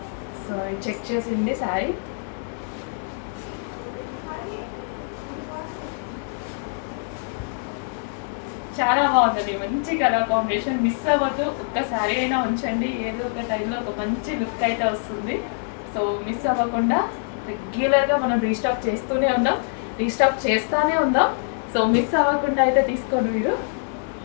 సో చెక్ చేసింది శారీ. చాలా బాగుందండి. మంచి కలర్ కాంబినేషన్. మిస్ అవ్వద్దు, ఒక్కసారి అయినా ఉంచండి. ఏదో ఒక టైంలో ఒక మంచి లుక్ అయితే వస్తుంది. సో మిస్ అవ్వకుండా రెగ్యులర్గా మనం రీస్టాక్ చేస్తూనే ఉందాం. సో మిస్ అవ్వకుండా అయితే తీసుకోండి మీరు.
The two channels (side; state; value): right; silent; 62 dB below the other